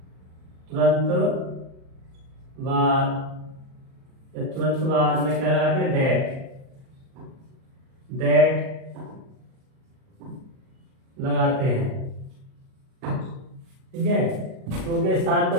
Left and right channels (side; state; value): left; late; 38 ms